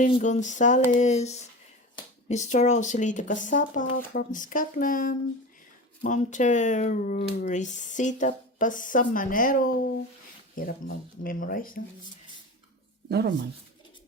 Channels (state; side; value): normal; both; correlation 0.29